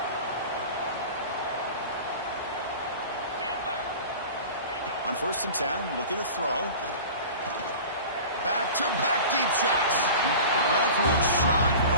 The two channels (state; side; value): inverted; both; correlation -0.38